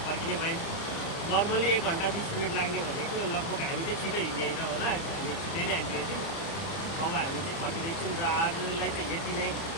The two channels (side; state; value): right; late; 30 ms